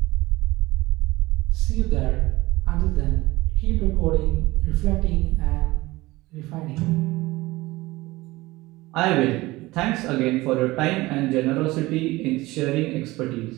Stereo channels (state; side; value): quieter; left; 19.8 dB